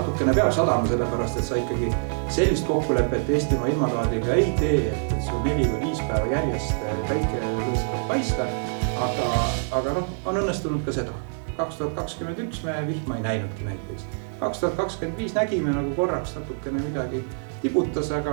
peab sadama sellepärast, et sa ikkagi sellist kokkulepet Eestimaa ilmataadiga ei tee, et sul 4 või 5 päeva järjest väike lõõskab paista, aga on õnnestunud ka seda. 2021 me vihma ei näinudki näiteks. 2025 nägime nagu korraks natukene midagi tibutas,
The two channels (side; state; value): left; silent; 62 dB below the other